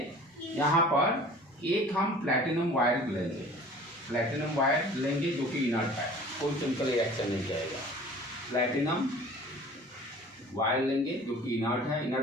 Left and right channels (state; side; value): normal; both; correlation 0.45